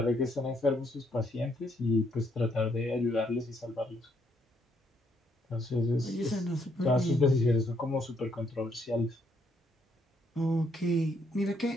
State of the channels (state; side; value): normal; both; correlation 0.72